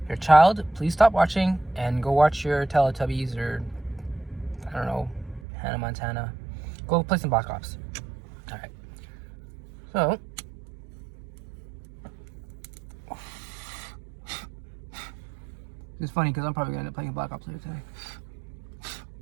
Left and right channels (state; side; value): drops out; left; at 5.4 s